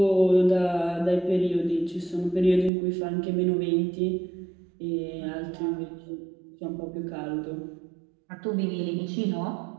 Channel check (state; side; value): drops out; left; at 2.7 s